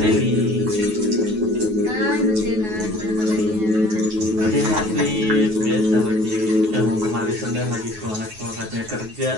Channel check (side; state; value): left; late; 9.4 ms